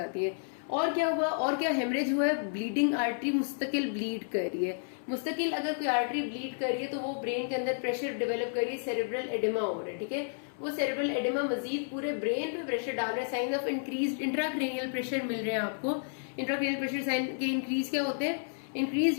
है। और क्या हुआ, और क्या हेमरेज हुआ है, ब्लीडिंग आर्टरी मुस्तकिल ब्लीड कर रही है। मुस्तकिल अगर कोई आर्टरी ब्लीड कर रही है तो वो ब्रेन के अंदर प्रेशर डेवलप कर रही है, सेरेब्रल एडिमा हो रहा है। ठीक है, वो सेरेब्रल एडिमा मजीद पूरे ब्रेन पे प्रेशर डाल रहा है। Sign of increase intracranial pressure मिल रहे हैं आपको। इंट्राक्रेनियल प्रेशर साइन के इंक्रीज क्या होते हैं,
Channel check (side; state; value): right; silent; 57 dB below the other